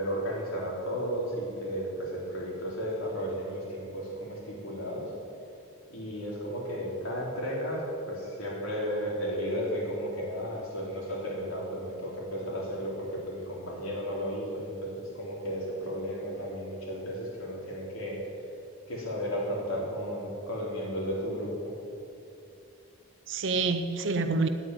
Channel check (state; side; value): normal; both; correlation 0.09